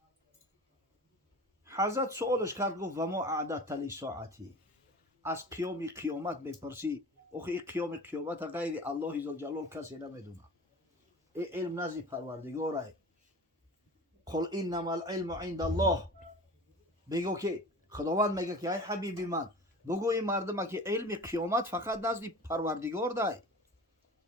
حضرت سوالش کرد گفت و ما اعددت لساعتی، از قیامت میپرسی؟ آخه این قیامت غیر الله ذوالجلال کسی نمیدونه، این علم نزد پروردگاره. قل انما العلم عند الله، بگو که خداوند میگه که ای حبیب من بگو این مردم که علم قیامت فقط نزد پروردگار ده،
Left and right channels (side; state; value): both; normal; correlation 0.38